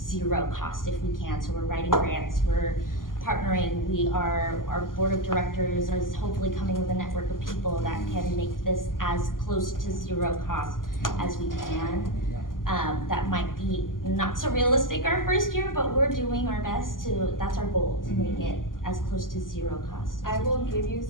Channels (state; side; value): late; right; 0.90 ms